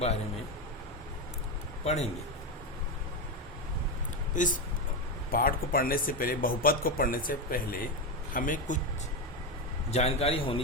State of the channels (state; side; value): normal; both; correlation 0.12